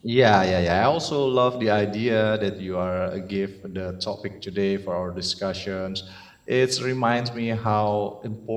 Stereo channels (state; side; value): identical; both; correlation 1.00